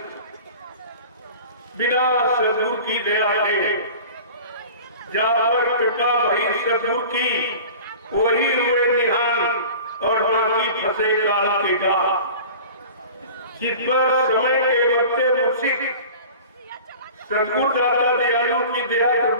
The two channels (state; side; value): inverted; both; correlation -0.40